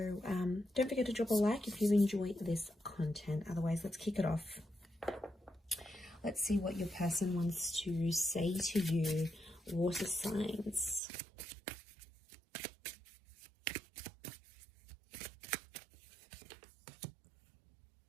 don't forget to drop a like if you enjoy this content. Otherwise, let's kick it off. Let's see what your person wants to say to you, water signs.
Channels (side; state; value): left; drops out; at 11.0 s